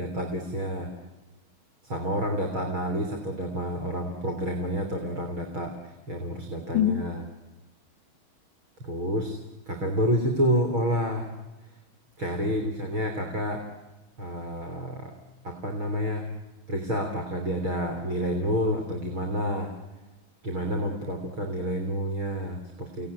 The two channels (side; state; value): left; late; 6.4 ms